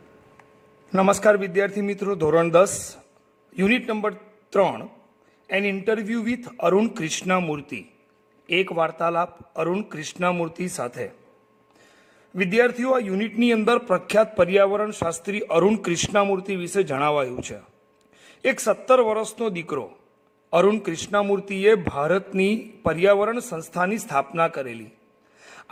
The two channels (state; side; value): identical; both; correlation 1.00